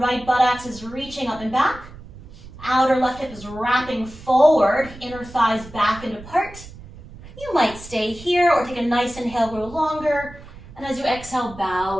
buttocks is reaching up and back. Outer left hip is wrapping forward, inner thighs back and apart. You might stay here or take a nice inhale, grow longer. And as you exhale, bow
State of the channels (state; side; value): noise; right; rumble, 17 dB below the sound